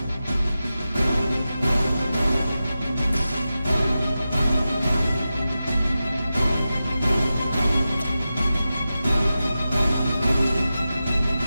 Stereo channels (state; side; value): inverted; both; correlation -0.93